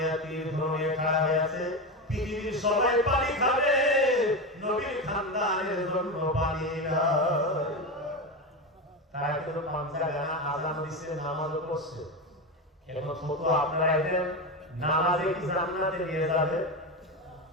তীর ধনুক খাড়া হয়ে আছে। পৃথিবীর সবাই পানি খাবে, নবীর খানদানের জন্য পানি নাই। তারা কিন্তু পাঁচটা গানা আজান দিচ্ছে, নামাজও পড়ছে। এখন ছোট আপনারা এদের নামাজে কি জান্নাতে নিয়ে যাবে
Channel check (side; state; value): both; normal; correlation 0.17